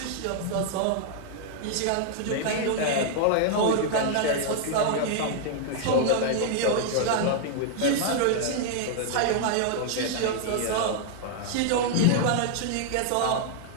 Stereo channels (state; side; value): different; both; correlation 0.00